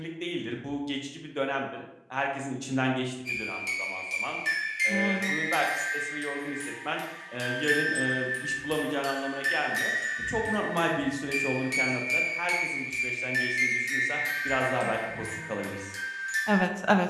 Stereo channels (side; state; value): both; identical; correlation 1.00